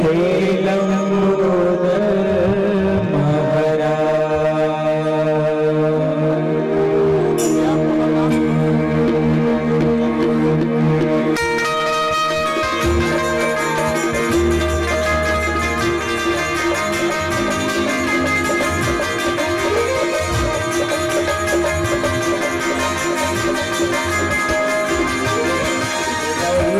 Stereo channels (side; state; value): both; identical; correlation 1.00